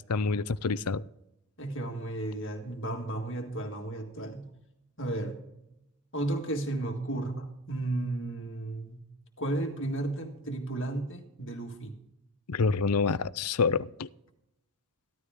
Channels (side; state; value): both; normal; correlation 0.29